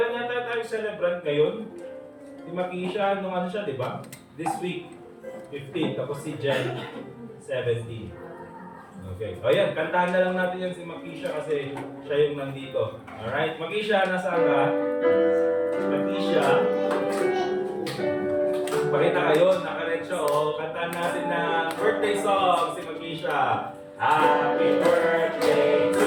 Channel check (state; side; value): identical; both; correlation 1.00